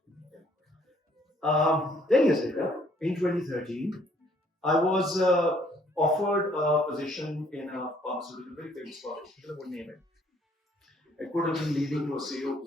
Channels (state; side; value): normal; both; correlation 0.63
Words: 10 years later, in 2013, I was offered a position in a pharmaceutical, very famous pharmaceutical, I won't name it. It could have been leading to a CEO